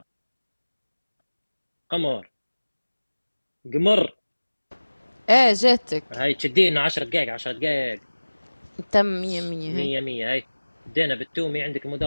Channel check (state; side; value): inverted; both; correlation -1.00